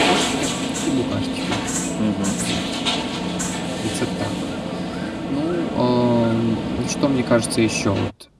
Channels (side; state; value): both; identical; correlation 1.00